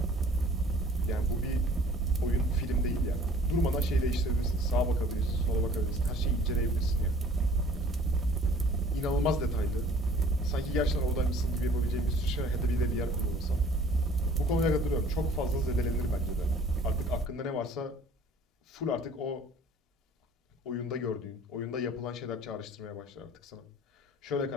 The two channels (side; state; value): both; normal; correlation 0.52